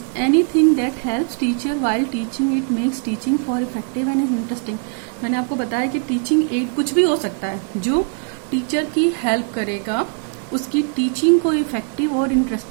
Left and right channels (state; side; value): quieter; left; 39.4 dB